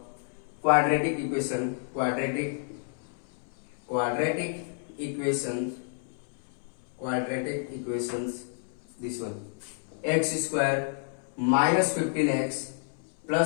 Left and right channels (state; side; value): silent; right; 58 dB below the other